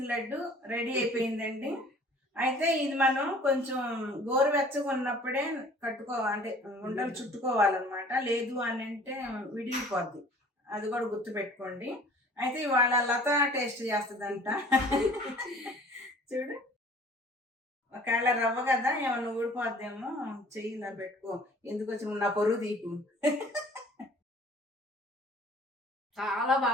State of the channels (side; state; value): both; normal; correlation 0.50